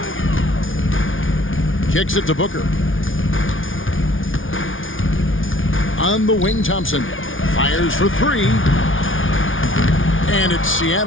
Kicks it to Booker. On the wing, Thompson. Fires for 3. And it's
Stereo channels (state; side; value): late; right; 0.57 ms